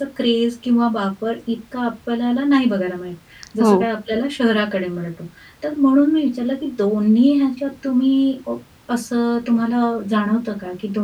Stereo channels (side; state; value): both; identical; correlation 1.00